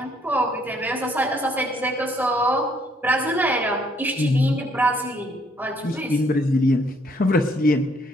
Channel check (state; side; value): normal; both; correlation 0.67